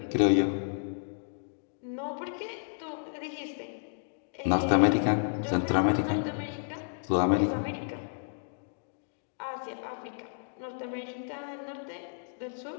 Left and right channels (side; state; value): right; silent; digital silence